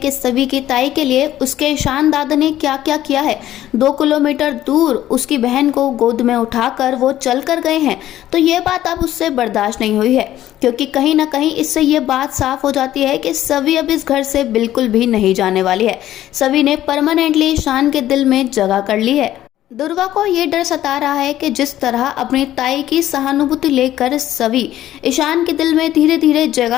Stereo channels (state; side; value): quieter; right; 13.1 dB